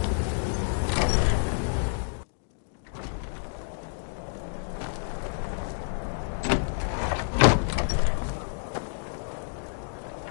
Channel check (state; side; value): silent; right; digital silence